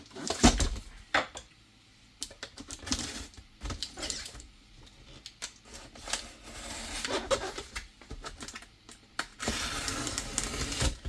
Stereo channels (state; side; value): identical; both; correlation 1.00